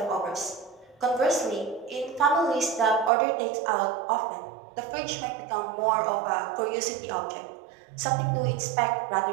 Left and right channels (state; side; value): drops out; left; at 3.1 s